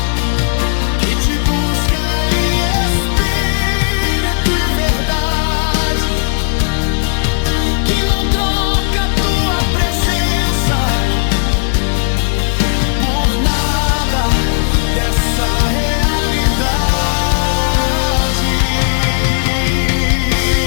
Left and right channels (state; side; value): silent; right; digital silence